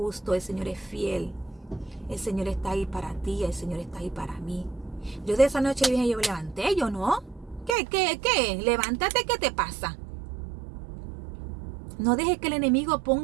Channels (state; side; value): drops out; left; at 7.7 s